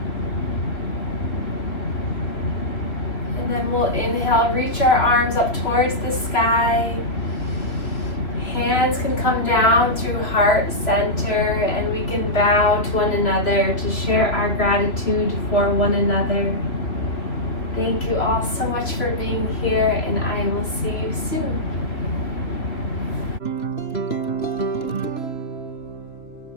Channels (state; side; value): late; right; 3.0 ms